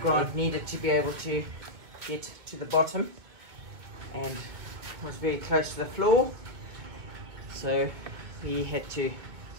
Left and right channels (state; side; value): late; left; 1.9 ms